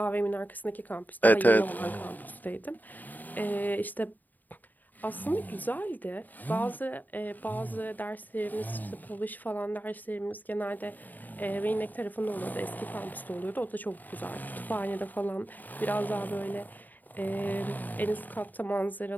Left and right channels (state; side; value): late; right; 0.086 ms